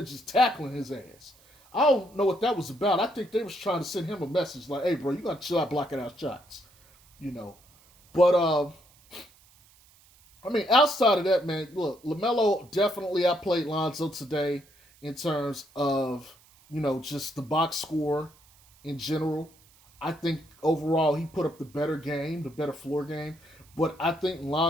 just tackling his ass. I don't know what that was about. I think they was trying to send him a message like, hey, bro, you got to chill out blocking out shots. But, I mean, outside of that, man, look, Lamelo definitely outplayed Lonzo today in terms of, just the box score in general. I think overall he put up the better game, the better floor game. But I think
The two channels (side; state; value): right; noise; hiss, 28 dB below the sound